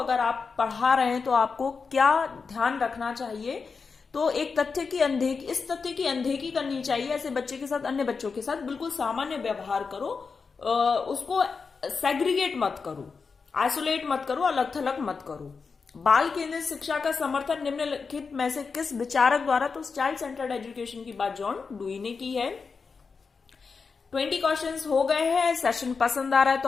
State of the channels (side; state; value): right; quieter; 5.1 dB